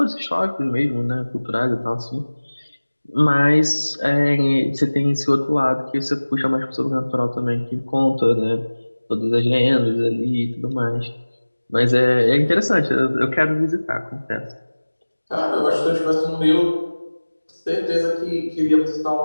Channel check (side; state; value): both; inverted; correlation -1.00